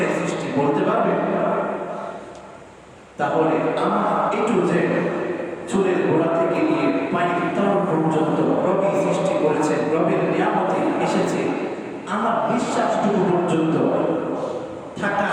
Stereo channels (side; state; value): both; identical; correlation 1.00